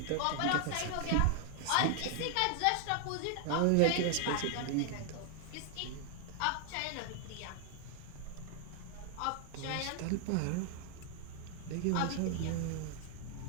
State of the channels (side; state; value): both; different; correlation 0.00